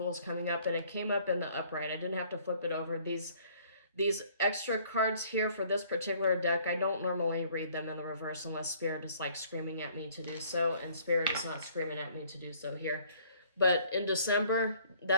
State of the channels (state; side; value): inverted; both; correlation -0.58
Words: coming up, and it came up in the upright. I didn't have to flip it over. These extra cards here for this particular deck, I don't normally read them in the reverse unless Spirit is like screaming at me to do so, and Spirit is not screaming at me to do so here. But in December,